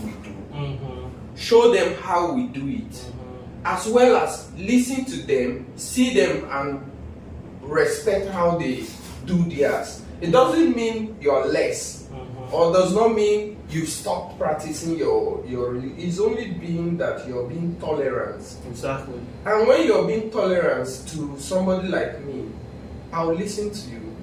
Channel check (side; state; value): both; identical; correlation 1.00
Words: we do. Show them how we do it. As well as listen to them, see them, and respect how they do theirs. It doesn't mean you're less, or does not mean you've stopped practicing your religion. It's only being that you're being tolerant. And when you're being tolerant to somebody like me, I'll listen to you.